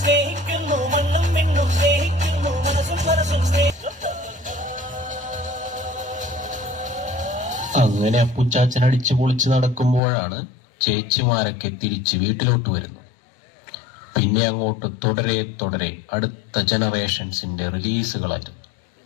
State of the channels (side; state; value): right; drops out; at 10.0 s